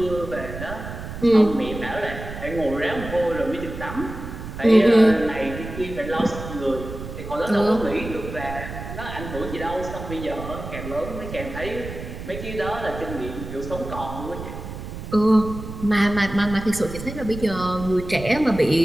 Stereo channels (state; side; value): noise; right; rumble, 9 dB below the sound